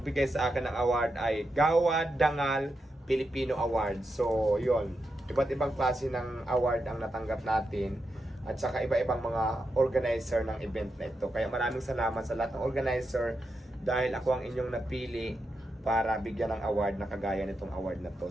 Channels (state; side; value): normal; both; correlation 0.86